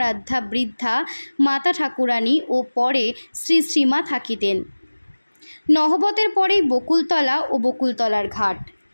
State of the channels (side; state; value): both; inverted; correlation -1.00